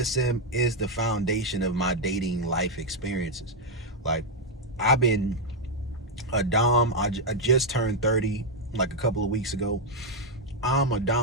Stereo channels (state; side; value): normal; both; correlation 0.00